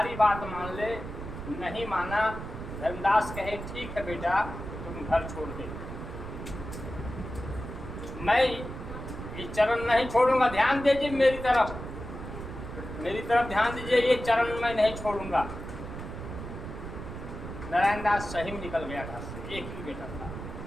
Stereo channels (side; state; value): right; noise; rumble, 9 dB below the sound